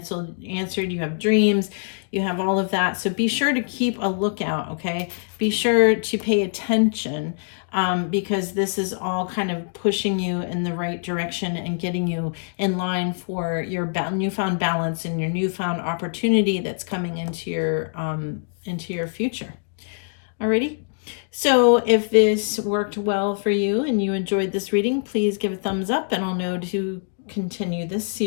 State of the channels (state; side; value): silent; right; digital silence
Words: You have dreams. You have all of that. So be sure to keep a lookout, okay? Be sure to pay attention, because this is all kind of pushing you in the right direction and getting you in line for your newfound balance and your newfound opportunity that's coming into your future. Alrighty? So if this worked well for you and you enjoyed this reading, please give a thumbs up and I'll know to continue this